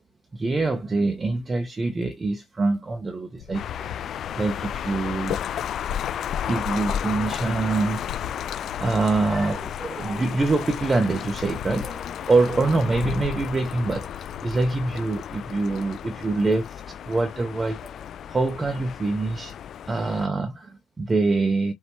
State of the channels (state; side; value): normal; both; correlation 0.86